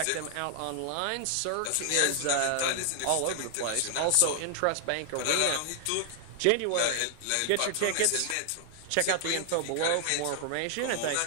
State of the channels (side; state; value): both; different; correlation 0.00